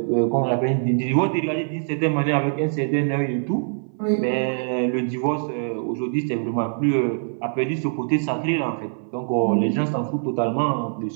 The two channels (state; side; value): silent; left; 57 dB below the other